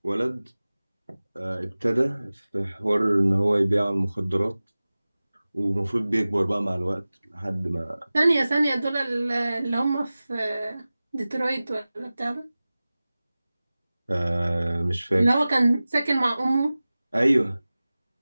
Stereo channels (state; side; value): inverted; both; correlation -0.97